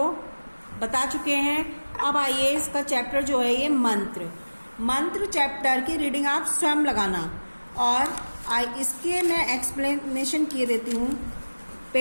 बता चुके हैं। अब आइए इसका चैप्टर जो है ये मंत्र चैप्टर की रीडिंग आप स्वयं लगाना और इसके मैं एक्सप्लेनेशन किए देती हूँ।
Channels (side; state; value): both; inverted; correlation -1.00